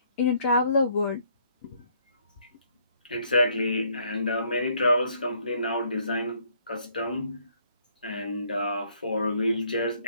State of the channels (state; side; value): inverted; both; correlation -0.66